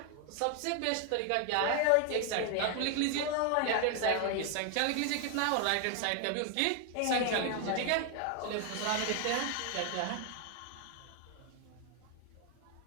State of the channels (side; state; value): both; different; correlation 0.00